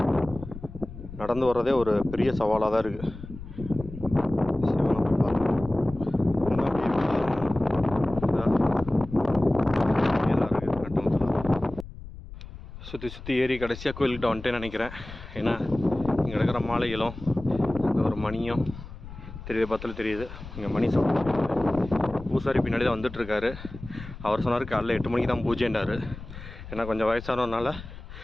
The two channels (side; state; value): left; noise; rumble, 13 dB below the sound